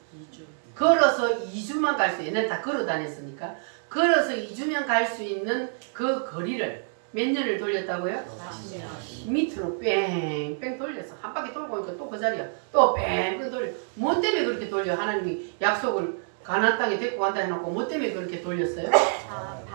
걸어서 2주만 갈 수, 얘네 다 걸어 다녔으니까 걸어서 2주면 갈 수 있는 그 거리를 몇 년을 돌렸다고요? 40년. 밑으로 뺑뺑 돌렸어. 한 바퀴 돌고 오니까 또 그 자리야. 또 뺑뺑 돌려. 뭐 때문에 그렇게 돌려? 하나님이 약속을 가나안 땅에 데리고 간다 해놓고 뭐 때문에 그렇게 돌렸어요?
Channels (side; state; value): left; silent; digital silence